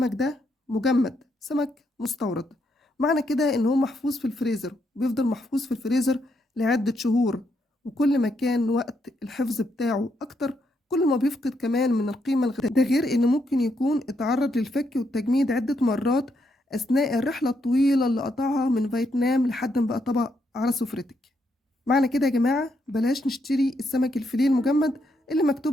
ده مجمد، سمك مستورد، معنى كده إن هو محفوظ في الفريزر، بيفضل محفوظ في الفريزر لعدة شهور، وكل ما كان وقت الحفظ بتاعه أكتر كل ما بيفقد كمان من القيمة الغذائية. ده غير إنه ممكن يكون اتعرض للفك والتجميد عدة مرات أثناء الرحلة الطويلة اللي قطعها من فيتنام لحد ما بقى طبق على سفرتك. معنى كده يا جماعة بلاش نشتري السمك الفيليه المجمد اللي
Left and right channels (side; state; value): both; normal; correlation 0.78